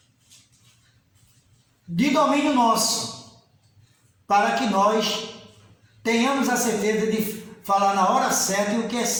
de domínio nosso, para que nós tenhamos a certeza de falar na hora certa e o que é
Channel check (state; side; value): identical; both; correlation 1.00